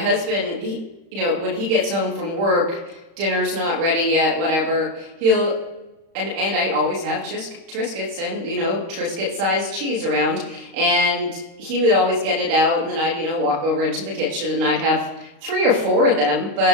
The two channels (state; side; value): late; left; 35 ms